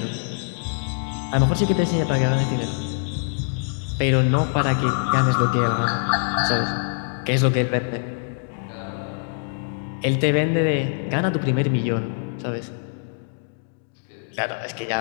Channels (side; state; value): right; silent; digital silence